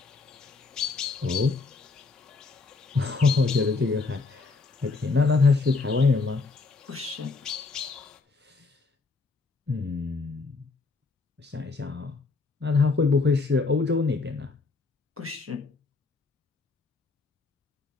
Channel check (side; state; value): right; quieter; 4.1 dB